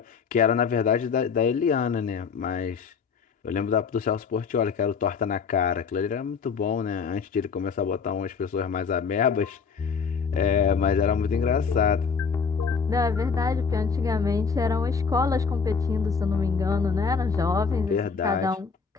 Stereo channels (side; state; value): right; quieter; 5.7 dB